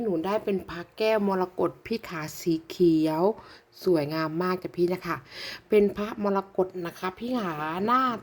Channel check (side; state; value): both; identical; correlation 1.00